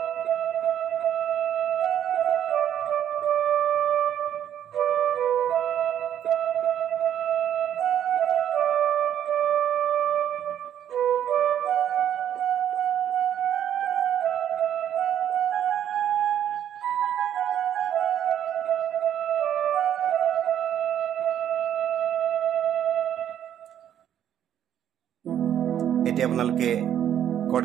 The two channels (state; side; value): quieter; left; 10.1 dB